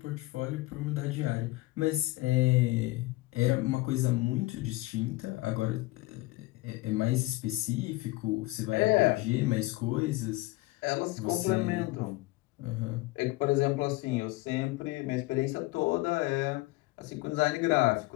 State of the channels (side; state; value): right; quieter; 20.4 dB